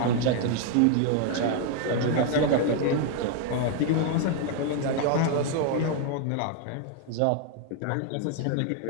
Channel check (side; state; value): both; different; correlation 0.00